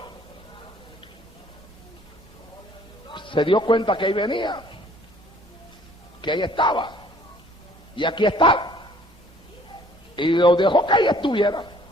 Se dio cuenta que ahí venía, que ahí estaba, y aquí está. Y lo dejó que ahí estuviera.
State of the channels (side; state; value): both; normal; correlation 0.57